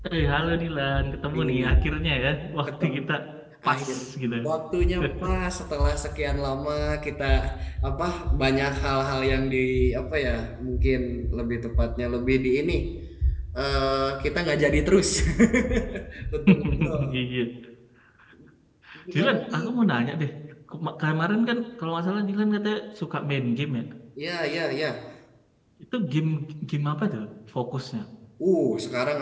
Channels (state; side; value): identical; both; correlation 1.00